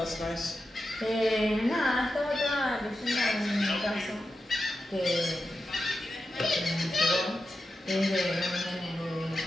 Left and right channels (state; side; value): normal; both; correlation 0.90